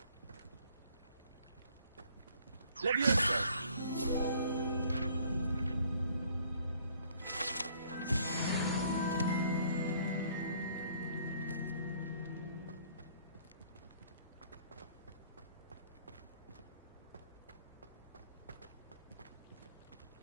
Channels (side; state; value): both; inverted; correlation -0.60